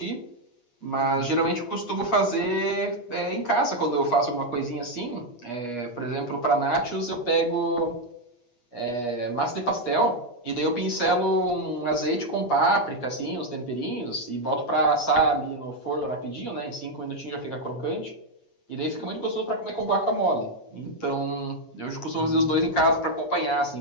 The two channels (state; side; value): late; right; 8.2 ms